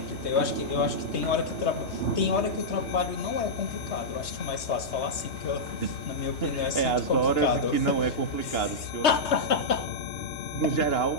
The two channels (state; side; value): late; right; 3.2 ms